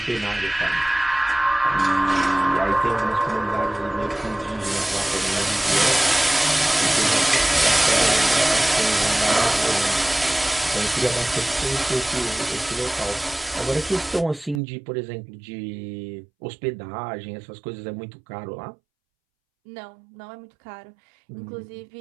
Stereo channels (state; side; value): drops out; left; at 14.6 s